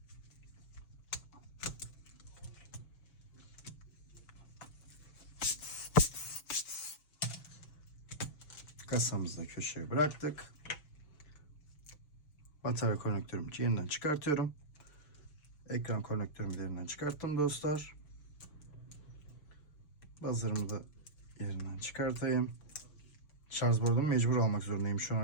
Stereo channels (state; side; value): late; right; 6.9 ms